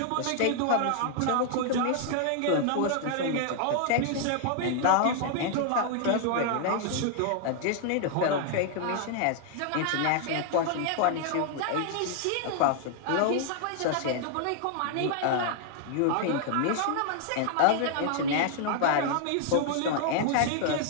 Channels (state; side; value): different; both; correlation 0.00